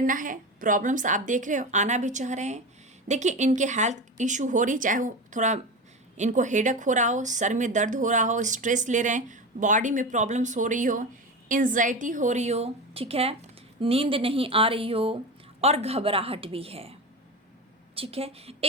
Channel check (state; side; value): normal; both; correlation 0.24